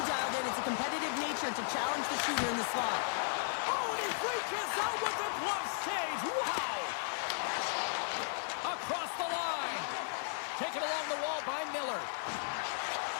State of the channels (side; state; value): right; silent; digital silence